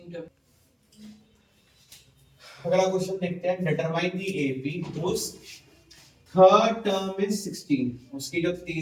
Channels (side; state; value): both; identical; correlation 1.00